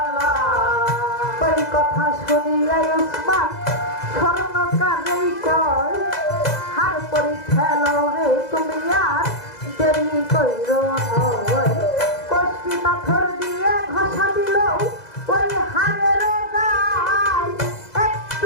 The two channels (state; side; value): late; right; 2.0 ms